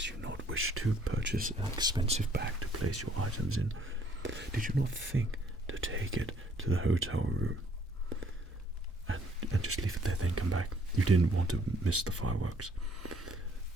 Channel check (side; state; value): both; normal; correlation 0.63